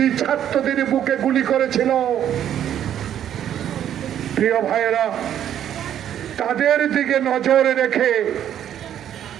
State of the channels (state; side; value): quieter; left; 10.4 dB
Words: ছাত্রদের বুকে গুলি করেছিল। প্রিয় ভাইয়েরা, তাদের দিকে নজর রেখে